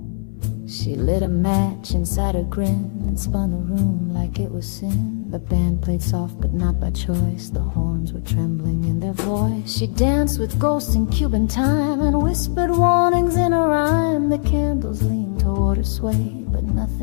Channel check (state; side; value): silent; right; 59 dB below the other